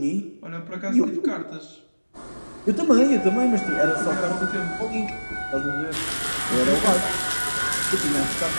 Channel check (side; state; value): both; inverted; correlation -1.00